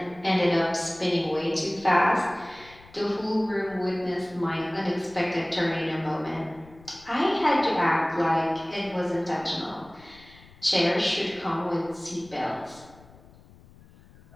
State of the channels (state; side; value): noise; left; rumble, 24 dB below the sound